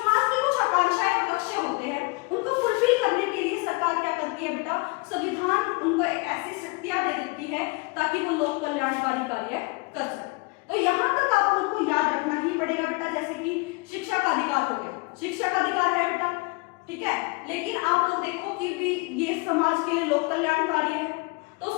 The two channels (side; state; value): right; quieter; 27.2 dB